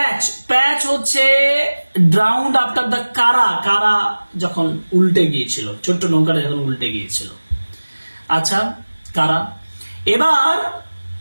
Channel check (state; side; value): inverted; both; correlation -1.00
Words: প্যাচ হচ্ছে ড্রাউন্ড আফটার দ্য কারা যখন উল্টে গিয়েছিল, ছোট্ট নৌকাটা যখন উল্টে গিয়েছিল। আচ্ছা, কারা। এবার